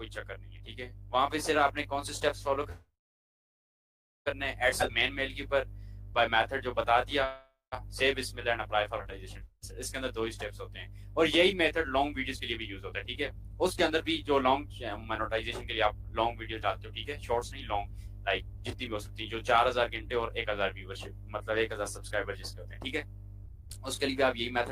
चक्कर नहीं है। ठीक है, वहां पे सिर्फ आपने कौन से स्टेप्स फॉलो करने हैं, एड मेन मेल के ऊपर बाय मेथड जो बता दिया, सेव बिस्मिल्लाह एंड अप्लाई फॉर मोनेटाइजेशन। इसके अंदर 2 ही स्टेप्स होते हैं, और यही मेथड लॉन्ग वीडियोस के लिए भी यूज होता है। ठीक है, उसके अंदर भी जो लॉन्ग मोनेटाइजेशन के लिए आप लॉन्ग वीडियो डालते हो, ठीक है, शॉर्ट्स नहीं, लॉन्ग, लाइक जितनी भी हो सकती है, जो 4000 घंटे और 1000 व्यूवरशिप, मतलब 1000 सब्सक्राइबर जिसके होते हैं। ठीक है, उसके लिए भी आप यही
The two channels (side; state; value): both; identical; correlation 1.00